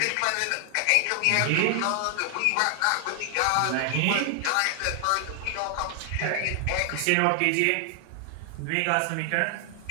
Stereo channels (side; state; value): both; different; correlation 0.00